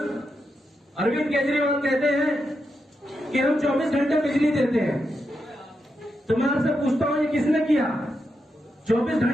अरविंद केजरीवाल कहते हैं कि हम 24 घंटे बिजली देते हैं। तो मैं आपसे पूछता हूं, ये किसने किया? 24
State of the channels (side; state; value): both; normal; correlation 0.85